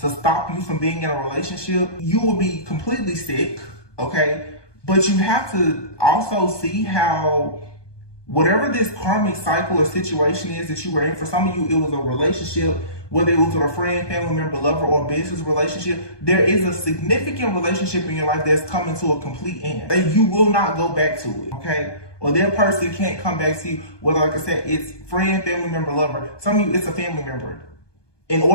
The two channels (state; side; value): late; right; 1.2 ms